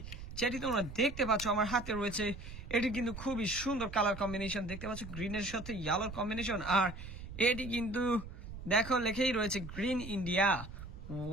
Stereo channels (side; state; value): right; noise; rumble, 11 dB below the sound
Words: যেটি তোমরা দেখতে পাচ্ছ আমার হাতে রয়েছে। এটি কিন্তু খুবই সুন্দর কালার কম্বিনেশন, দেখতে পাচ্ছ গ্রিনের সাথে ইয়েলোর কম্বিনেশন। আর এটি কিন্তু দেখো লেখেই রয়েছে গ্রিন ইন্ডিয়া।